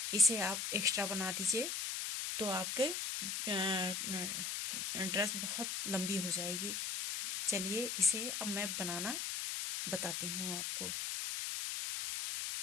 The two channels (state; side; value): noise; left; hiss, 2 dB below the sound